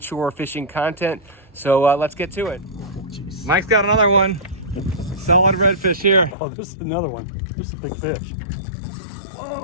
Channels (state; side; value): drops out; right; at 6.4 s